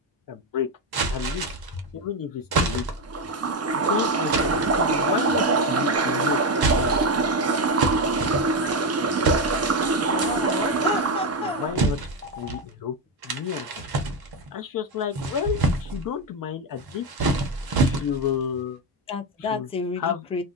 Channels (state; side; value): normal; both; correlation 0.10